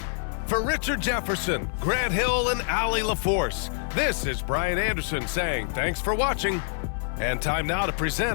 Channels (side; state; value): right; silent; 61 dB below the other